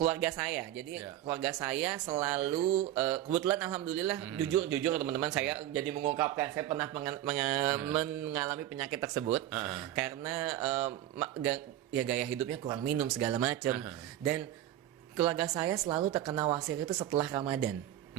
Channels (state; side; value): quieter; left; 13.0 dB